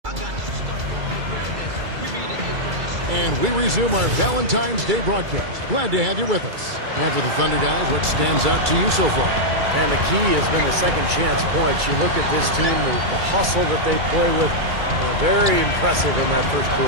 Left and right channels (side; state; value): left; late; 2.3 ms